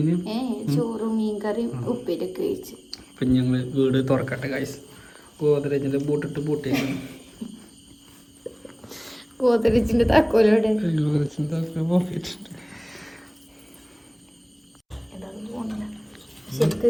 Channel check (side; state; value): both; identical; correlation 1.00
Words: ചോറും മീൻകറിയും ഉപ്പേരിയൊക്കെ കഴിച്ചു. അപ്പൊ ഞങ്ങള് വീട് തുറക്കട്ടെ ഗൈസ്. ഗോദ്രേജിന്റെ ബൂട്ടിട്ട് പൂട്ടിയേക്കാണ്. ഗോദ്രേജിന്റെ താക്കോലോടെ ശരിക്ക്